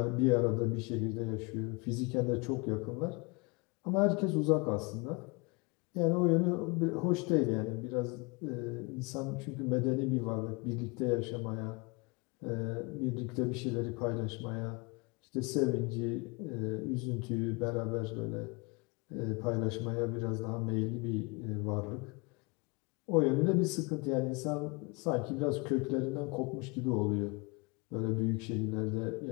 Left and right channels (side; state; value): right; quieter; 29.3 dB